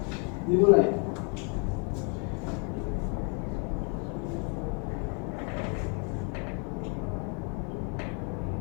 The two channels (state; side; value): quieter; right; 37.7 dB